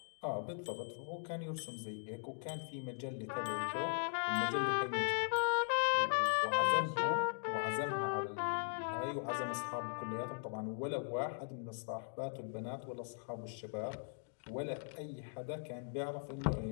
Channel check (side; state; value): right; silent; digital silence